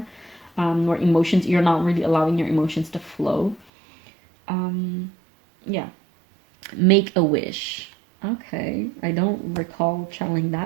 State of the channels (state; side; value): drops out; left; at 3.7 s